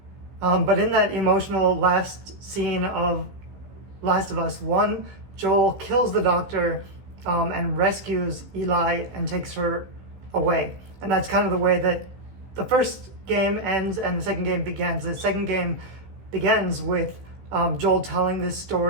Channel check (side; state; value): left; late; 15 ms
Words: But in that emotional last scene of Last of Us 1, Joel kills the doctor and rescues Eli and takes her away. And that's kind of the way that the first game ends and the second game begins. The second game begins with Joel telling this